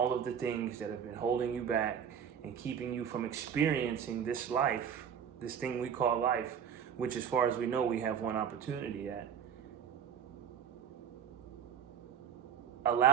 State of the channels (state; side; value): quieter; left; 8.1 dB